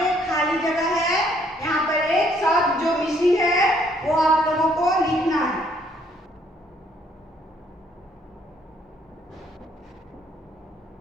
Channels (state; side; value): normal; both; correlation 0.66